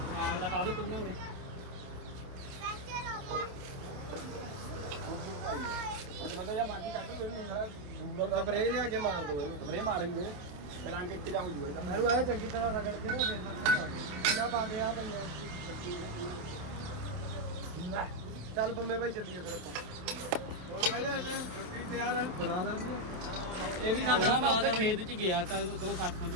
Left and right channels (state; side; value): late; left; 27 ms